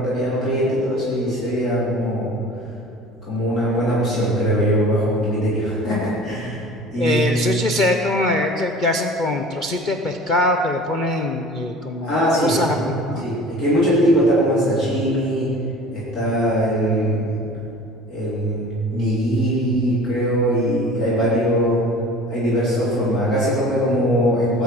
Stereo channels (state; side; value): normal; both; correlation 0.43